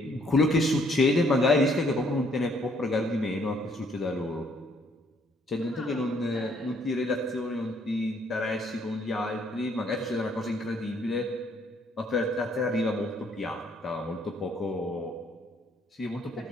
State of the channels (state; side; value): normal; both; correlation 0.66